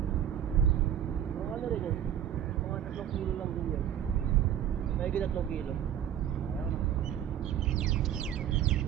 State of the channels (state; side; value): quieter; left; 10.2 dB